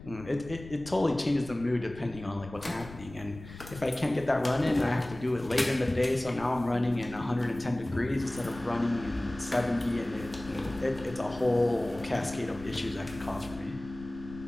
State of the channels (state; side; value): noise; left; rumble, 15 dB below the sound